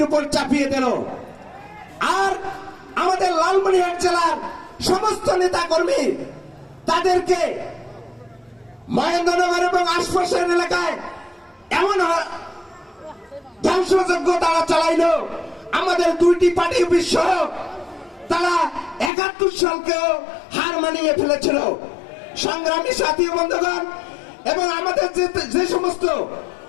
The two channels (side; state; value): right; drops out; at 19.1 s